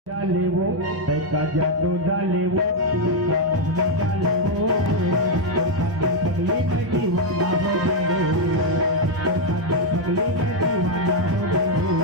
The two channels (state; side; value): late; left; 1.1 ms